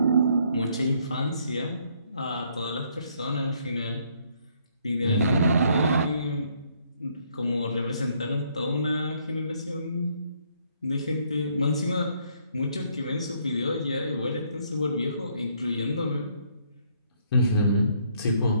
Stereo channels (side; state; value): both; inverted; correlation -0.68